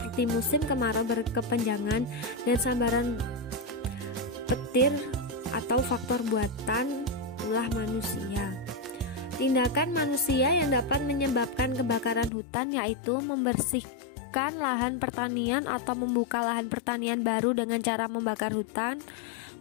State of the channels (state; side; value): drops out; right; at 12.3 s